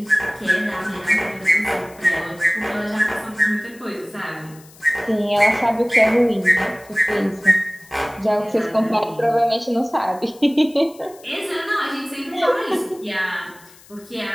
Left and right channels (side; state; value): left; noise; hiss, 24 dB below the sound